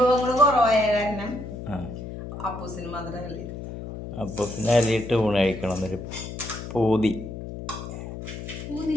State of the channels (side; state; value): left; noise; hum, 9 dB below the sound